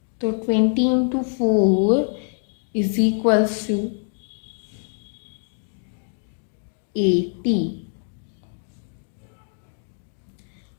तो 20 इंटू 4 इज इक्वल्स टू 80,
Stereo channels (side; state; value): right; silent; 62 dB below the other